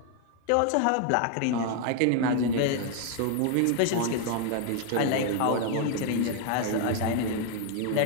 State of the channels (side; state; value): both; different; correlation 0.00